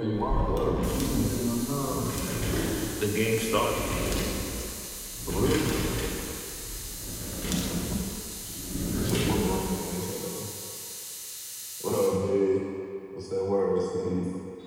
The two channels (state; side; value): identical; both; correlation 1.00